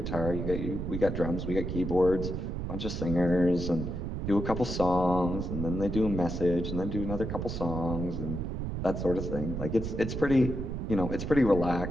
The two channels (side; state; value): right; noise; rumble, 4 dB below the sound